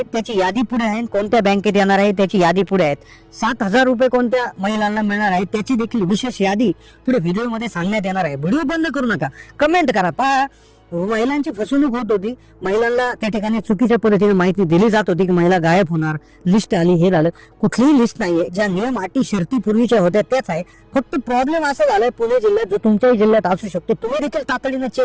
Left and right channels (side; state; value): both; identical; correlation 1.00